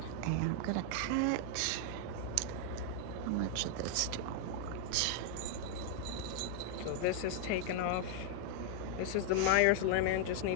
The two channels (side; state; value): both; different; correlation 0.00